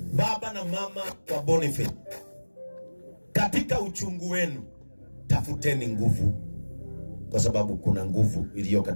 Baba na mama wa Boniface katika uchungu wenu tafuteni nguvu, kwa sababu kuna nguvu iliyo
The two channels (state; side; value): inverted; both; correlation -1.00